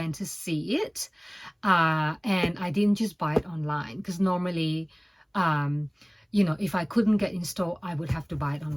to see it, and I didn't just buy it online, because normally you know, if I couldn't get in store, I would have to buy it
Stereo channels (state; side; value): identical; both; correlation 1.00